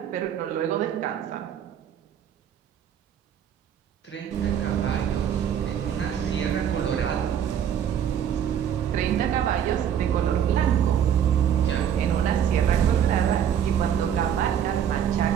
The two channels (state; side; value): quieter; left; 9.2 dB